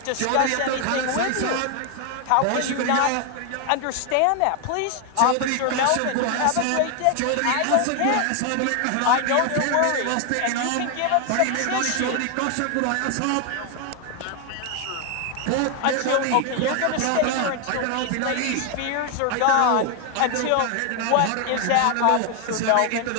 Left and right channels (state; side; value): different; both; correlation 0.00